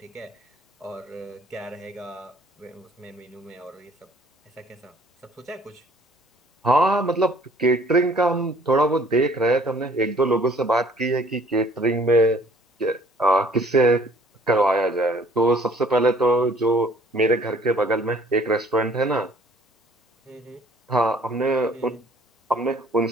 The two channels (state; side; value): normal; both; correlation 0.57